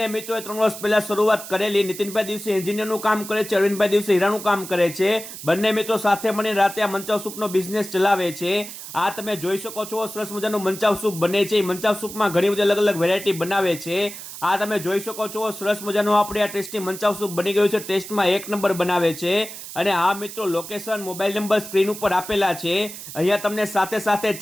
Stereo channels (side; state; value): right; noise; hiss, 12 dB below the sound